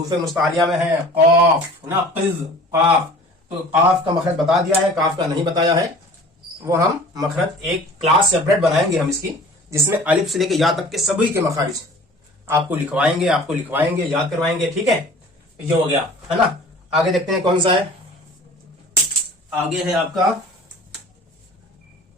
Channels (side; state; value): both; normal; correlation 0.45